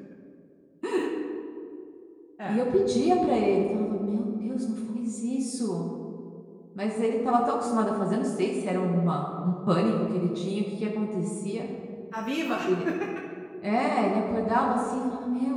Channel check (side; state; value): both; identical; correlation 1.00